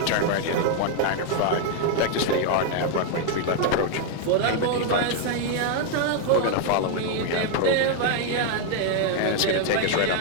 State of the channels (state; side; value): different; both; correlation 0.00